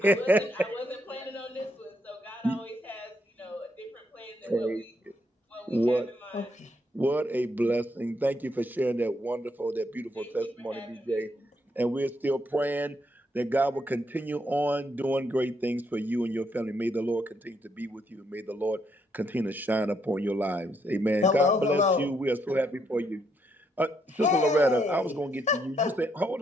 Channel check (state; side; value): normal; both; correlation 0.75